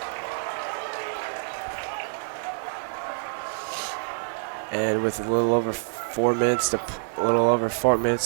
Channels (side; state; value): left; silent; digital silence